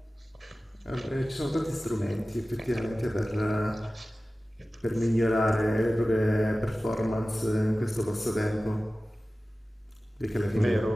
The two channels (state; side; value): normal; both; correlation 0.96